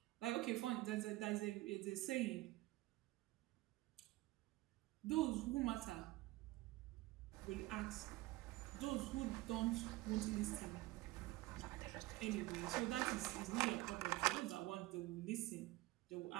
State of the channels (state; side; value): quieter; left; 18.7 dB